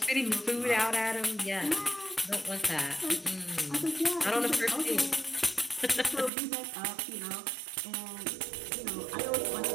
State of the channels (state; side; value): drops out; left; at 6.3 s